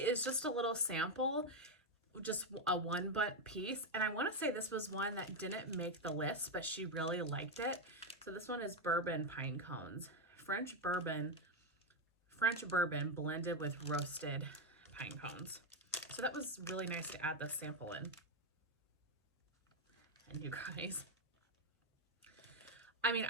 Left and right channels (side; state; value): both; normal; correlation 0.05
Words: just a little sample, just a 1 butt piece. And I want to say this was one that didn't make the list, but she really liked it. So this one is bourbon pine cones. French bourbon blended with roasted pine cones. So that was really nice to add this sample in. And you guys, I mean,